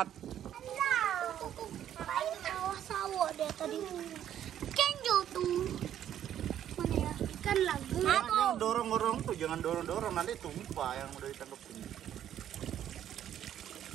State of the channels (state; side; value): quieter; left; 10.6 dB